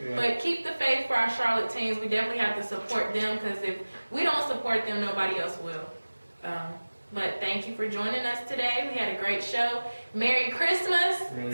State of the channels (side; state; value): both; inverted; correlation -1.00